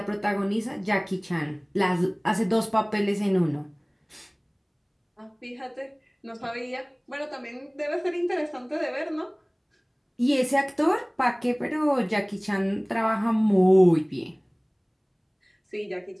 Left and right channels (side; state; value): both; identical; correlation 1.00